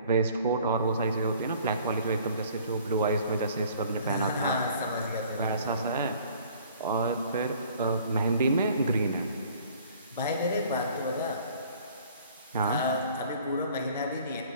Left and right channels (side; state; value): both; inverted; correlation -0.54